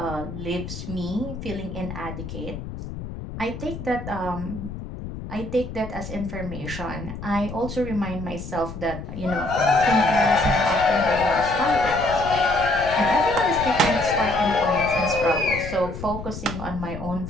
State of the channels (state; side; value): noise; left; rumble, 9 dB below the sound